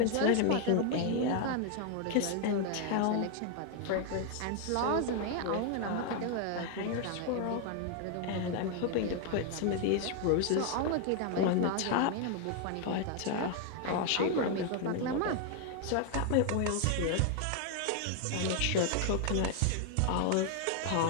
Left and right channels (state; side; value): different; both; correlation 0.00